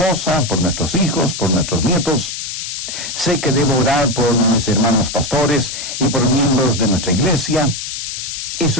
por nuestros hijos, por nuestros nietos. Sé que debo orar por mis hermanos pastores y por miembros de nuestra iglesia.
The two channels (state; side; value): noise; left; hiss, 6 dB below the sound